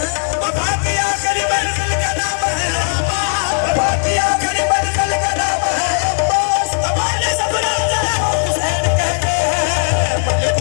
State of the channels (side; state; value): right; silent; digital silence